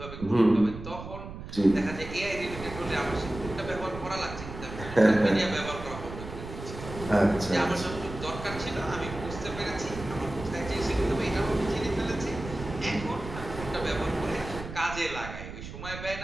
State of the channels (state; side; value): noise; right; rumble, 10 dB below the sound